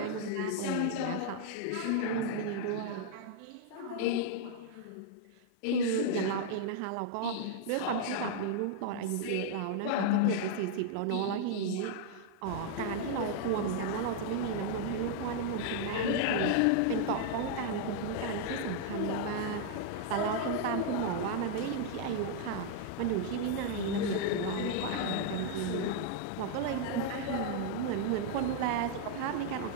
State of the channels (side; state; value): both; different; correlation -0.01